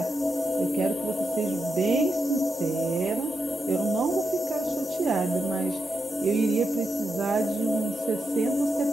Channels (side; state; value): both; normal; correlation 0.86